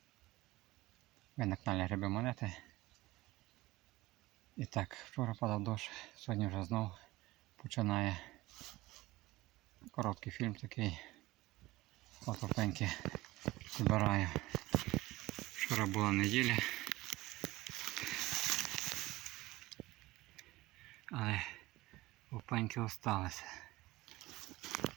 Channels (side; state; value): left; quieter; 18.9 dB